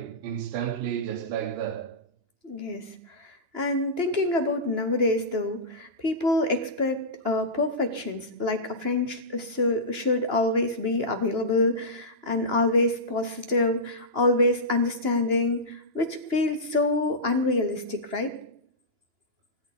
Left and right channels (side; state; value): left; late; 2.9 ms